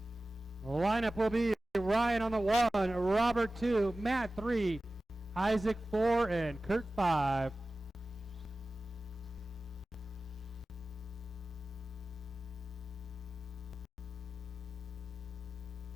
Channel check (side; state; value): both; normal; correlation 0.96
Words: The lineup will be Ryan on the 1, Robert 2, Matt 3, Isaac 4, and Kurt 5.